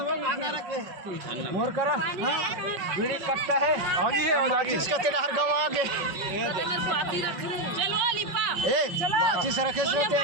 गाना रखे मोर करा मेरे कट्टा है आगे है और आगे इसका तेरा हर गांव आगे चलो लिपा ए माची से रखे सोते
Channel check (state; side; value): late; left; 5.6 ms